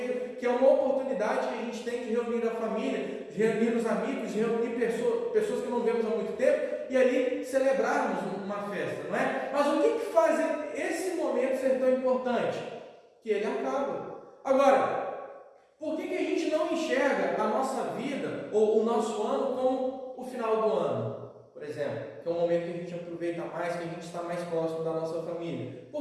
que é uma oportunidade que a gente tem de reunir a família, de reunir os amigos, de reunir pessoas que não vemos há muito tempo e ali celebrarmos uma festa, não é? Mas o que faz esse momento ser tão importante? Que ele acaba. Agora, por que a gente não enxerga a nossa vida ou o nosso ano como o final do ano? Por exemplo, que é um momento que a gente aproveita mais, que a gente está mais próximo da nossa família.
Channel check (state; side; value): identical; both; correlation 1.00